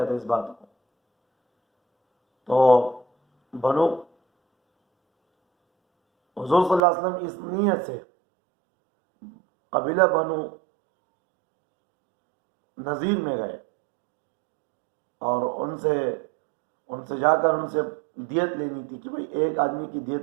تھا اس بات کو. تو حضور صلی اللہ علیہ وسلم اس نیت سے قبیلہ بنو نذیر میں گئے اور ان سے جا کر ان سے دیت لینی تھی کہ بھئی ایک آدمی کی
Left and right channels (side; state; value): left; drops out; at 6.9 s